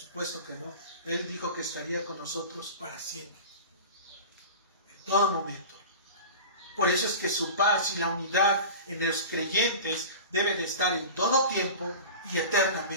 que no. Él dijo que estaría con nosotros para siempre, en todo momento. Por eso es que su paz y la unidad en los creyentes debe de estar en todo tiempo y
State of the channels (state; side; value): inverted; both; correlation -0.33